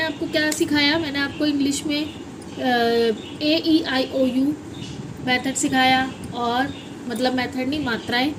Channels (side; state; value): both; identical; correlation 1.00